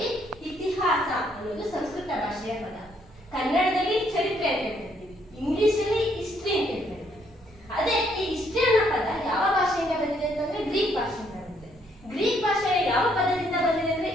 ಇತಿಹಾಸ ಅನ್ನೋದು ಸಂಸ್ಕೃತ ಭಾಷೆಯ ಪದ. ಕನ್ನಡದಲ್ಲಿ ಚರಿತ್ರೆ ಅಂತ ಹೇಳ್ತೀವಿ, ಇಂಗ್ಲಿಷ್ ಅಲ್ಲಿ ಹಿಸ್ಟ್ರಿ ಅಂತ ಹೇಳ್ತೀವಿ. ಅದೇ ಈ ಹಿಸ್ಟ್ರಿ ಅನ್ನೋ ಪದ ಯಾವ ಭಾಷೆಯಿಂದ ಬಂದಿದೆ ಅಂತಂದ್ರೆ ಗ್ರೀಕ್ ಭಾಷೆಯಿಂದ ಬಂದಿದೆ. ಗ್ರೀಕ್ ಭಾಷೆಯ ಯಾವ ಪದದಿಂದ ಬಂದಿದೆ ಅಂದ್ರೆ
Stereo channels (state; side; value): normal; both; correlation 0.70